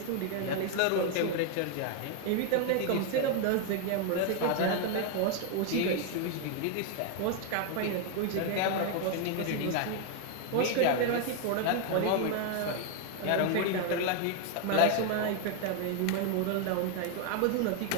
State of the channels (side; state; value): both; different; correlation 0.00